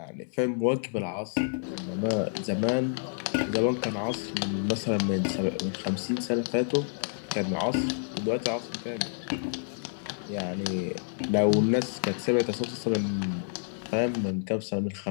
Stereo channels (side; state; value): right; silent; digital silence